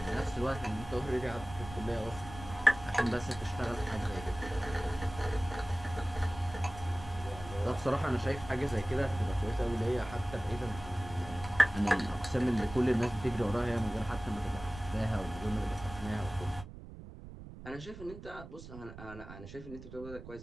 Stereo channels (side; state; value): right; noise; rumble, 14 dB below the sound